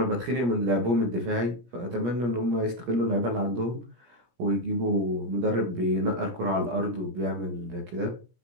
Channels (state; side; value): late; left; 17 ms